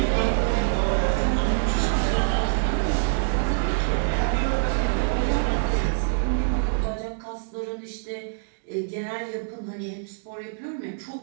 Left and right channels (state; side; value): silent; left; digital silence